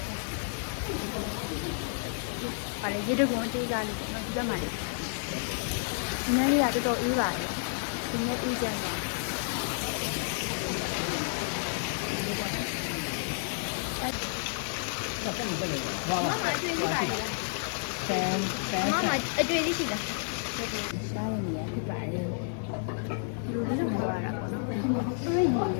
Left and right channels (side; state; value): right; silent; 57 dB below the other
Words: ပါလေရေတကွန်အသေးစားလေးပေါ့နော်ဒီဘက်မှာလေဒီနေ့လေးကတော်တော်အေးပါတယ်ဒီနေ့အေးကြတယ်ဘာမှမလုပ်ဘူး။ဘာ မမအတွေ့ရှိပါလား ဆန်ဆန် မမအတွေ့ရှိလားရှားရနေရဖြစ်ပါတယ်လူလေးတော့ပြောရတာပေါ့နော်တွေ့ရည်ပုံလ